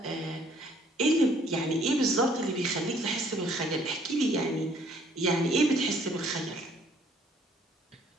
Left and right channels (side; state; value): both; normal; correlation 0.61